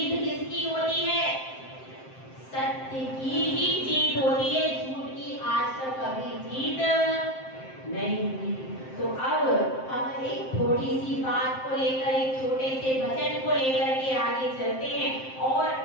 किसकी होती है? सत्य की ही जीत होती है, झूठ की आज तक कभी जीत नहीं हुई। तो अब हम एक थोड़ी सी बात को लेकर, एक छोटे से भजन को लेकर के आगे चलते हैं और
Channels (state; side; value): late; right; 7.6 ms